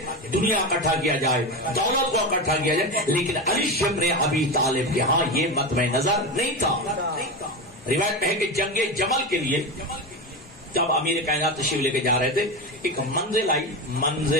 دنیا اکٹھا کیا جائے، دولت کو اکٹھا کیا جائے. لیکن علی ابن ابی طالب کے ہاں یہ مطمع نظر نہیں تھا. روایت میں ہے کہ جنگ جمل کے لیے جب امیر کائنات تشریف لے کے جا رہے تھے ایک منزل آئی،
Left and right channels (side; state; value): both; normal; correlation 0.19